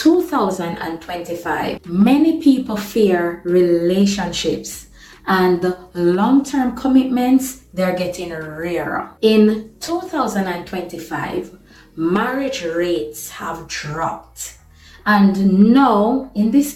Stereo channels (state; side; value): identical; both; correlation 1.00